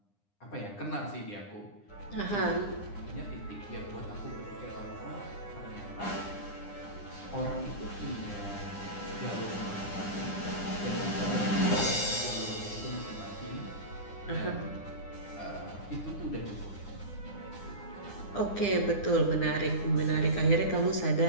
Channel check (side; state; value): right; late; 9.9 ms